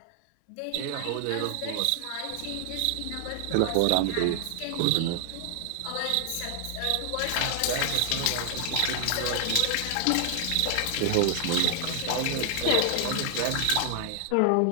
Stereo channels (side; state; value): both; different; correlation 0.00